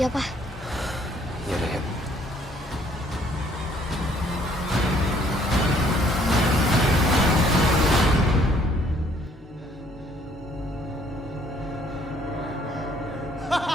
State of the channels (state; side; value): normal; both; correlation 0.63